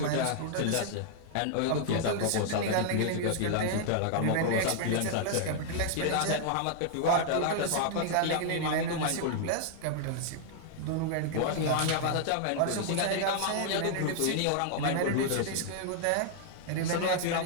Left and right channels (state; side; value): different; both; correlation -0.01